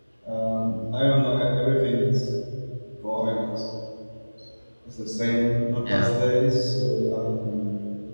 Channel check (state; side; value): inverted; both; correlation -1.00